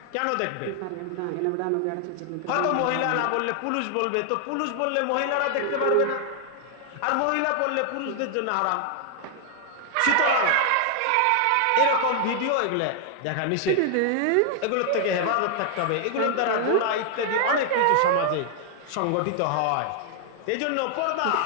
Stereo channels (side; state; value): both; different; correlation 0.00